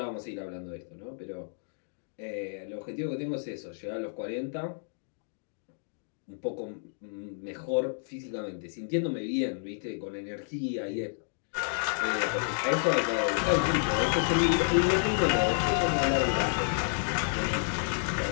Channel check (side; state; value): right; silent; digital silence